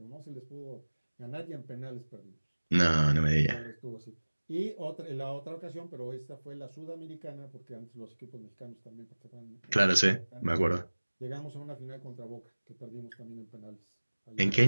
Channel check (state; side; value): inverted; both; correlation -1.00